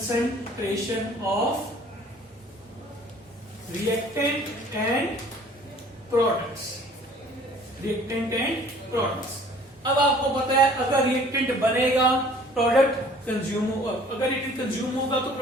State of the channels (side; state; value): both; normal; correlation 0.53